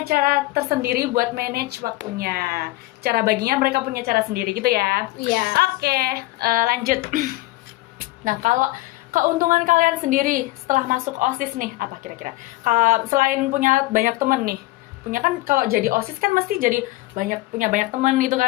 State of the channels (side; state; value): right; quieter; 19.3 dB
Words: cara tersendiri buat manage waktunya. Cara baginya mereka punya cara sendiri gitu ya. Iya. Oke, lanjut. Nah, kalau keuntungan kalian sendiri setelah masuk OSIS nih, apa kira-kira? Selain punya banyak temen nih, punya kan kalau jadi OSIS kan mesti jadi punya banyak temen gitu